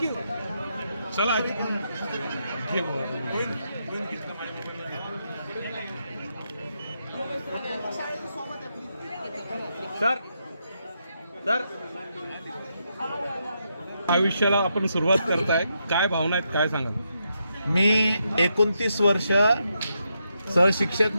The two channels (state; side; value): inverted; both; correlation -0.82